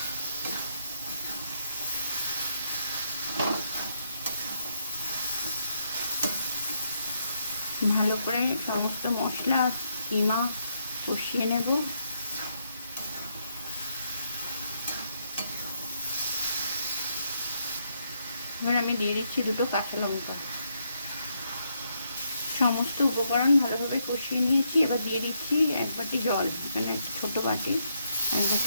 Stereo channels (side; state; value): both; inverted; correlation -0.77